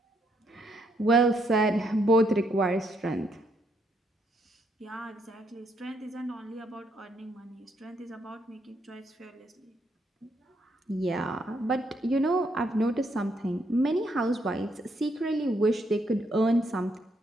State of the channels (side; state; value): both; normal; correlation 0.74